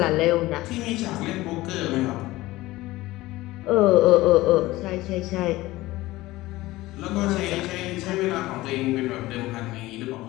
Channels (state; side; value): quieter; right; 18.2 dB